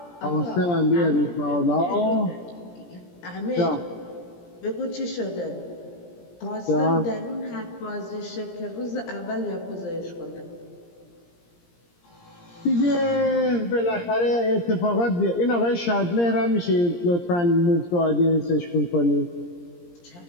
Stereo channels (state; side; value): late; right; 17 ms